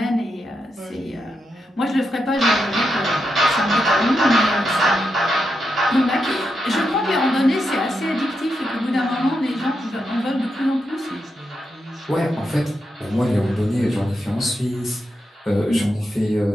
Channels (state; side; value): normal; both; correlation 0.85